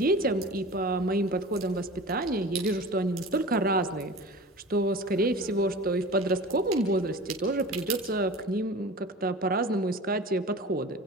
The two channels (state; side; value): normal; both; correlation 0.36